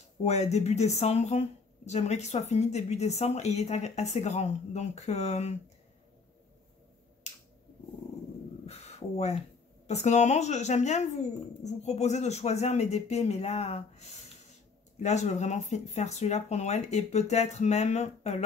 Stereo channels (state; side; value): quieter; right; 4.7 dB